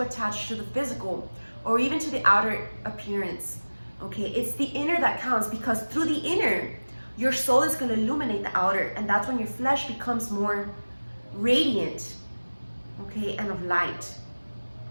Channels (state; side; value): inverted; both; correlation -1.00